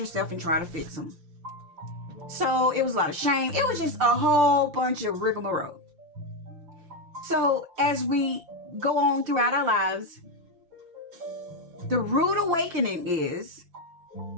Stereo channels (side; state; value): left; late; 5.8 ms